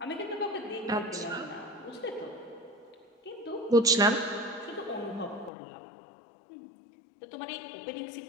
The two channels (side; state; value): right; drops out; at 5.5 s